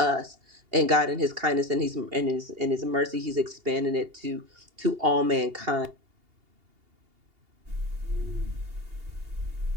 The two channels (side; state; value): left; late; 2.8 ms